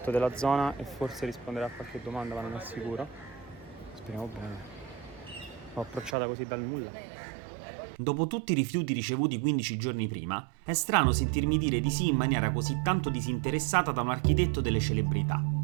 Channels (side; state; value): left; drops out; at 6.2 s